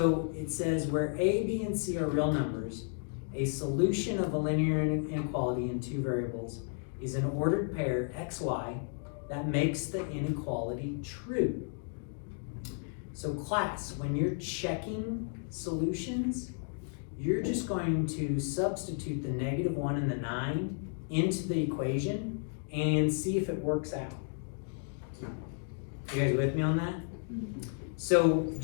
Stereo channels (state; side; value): silent; right; 56 dB below the other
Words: it says where a, b, and c are real numbers, a solution of a linear inequality in two variables is an ordered pair x, y that makes the inequality true. So class, when you're checking solutions, you're just going to substitute the -1 and the 9 into the equation and see if it works out. You guys with me on that? So,